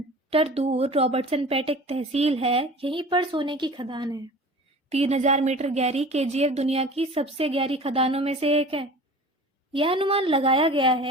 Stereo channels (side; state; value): both; normal; correlation 0.40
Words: दूर रॉबर्टसन पेट एक तहसील है। यहीं पर सोने की खदान है। 3000 मीटर गहरी केजीएफ दुनिया की सबसे गहरी खदानों में से एक है। यह अनुमान लगाया गया